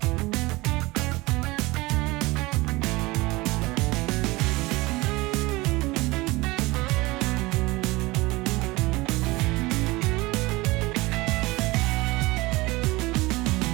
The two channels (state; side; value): quieter; left; 21.8 dB